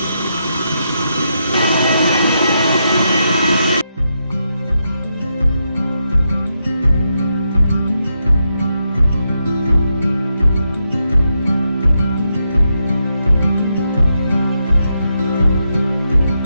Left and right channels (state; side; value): inverted; both; correlation -0.83